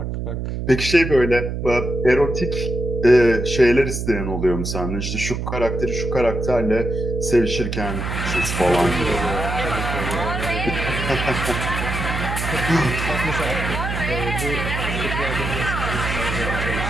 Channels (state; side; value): noise; right; hum, 4 dB below the sound